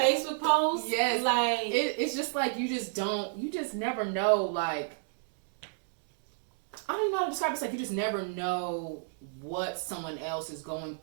post, yes, like it's just like you just never know. Like, I don't even know how to describe it. It's like you just never know what someone else is going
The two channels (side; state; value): left; silent; digital silence